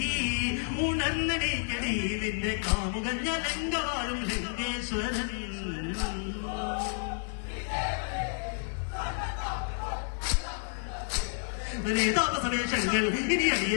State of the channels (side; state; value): right; silent; 57 dB below the other